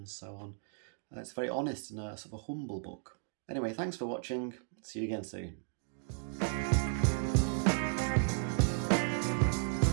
so on. It's very honest and a sort of a humble book. Anyway, thanks for watching, see you again soon.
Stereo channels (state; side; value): silent; left; digital silence